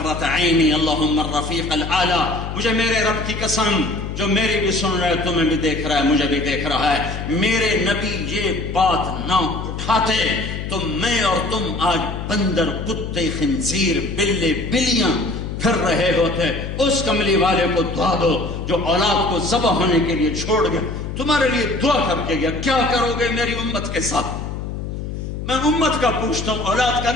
عینی اللہم الرفیق الاعلی. مجھے میرے رب کی قسم، جو میری بھی سن رہا ہے تمہیں بھی دیکھ رہا ہے، مجھے بھی دیکھ رہا ہے، میرے نبی یہ بات نہ اٹھاتے تو میں اور تم آج بندر، کتے، خنزیر، بلے، بلیاں پھر رہے ہوتے. اس کملی والے کو دعا دو جو اولاد کو ذبح ہونے کے لیے چھوڑ گیا، تمہارے لیے دعا کر کے گیا. کیا کرو گے میری امت کے ساتھ؟ میں امت کا پوچھتا ہوں، اولاد کا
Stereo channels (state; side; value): noise; left; hum, 6 dB below the sound